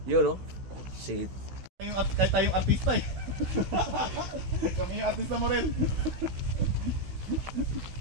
Yun no? Si Kahit tayong artista eh. Kami yung artista mo rin.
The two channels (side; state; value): left; late; 16 ms